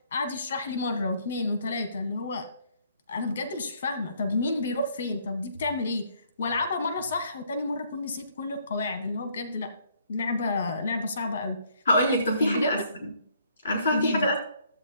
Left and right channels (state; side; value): inverted; both; correlation -0.66